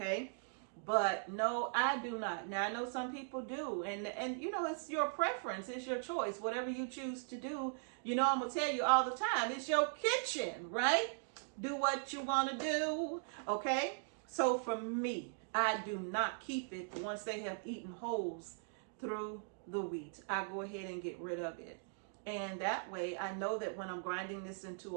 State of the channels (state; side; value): silent; left; digital silence